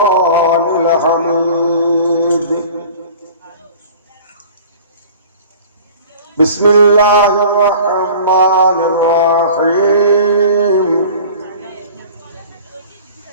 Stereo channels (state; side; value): inverted; both; correlation -0.43